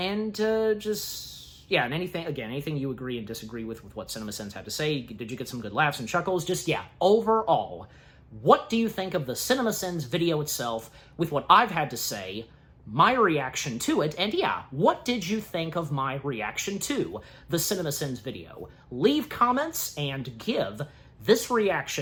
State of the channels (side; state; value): both; identical; correlation 1.00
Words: anything you agree and disagree with what CinemaSins had to say. Did you get some good laughs and chuckles? Overall, what do you think of the CinemaSins video itself with what I've had to say, my reaction to it, and what did you think of my reaction to the CinemaSins video? Leave comments and give this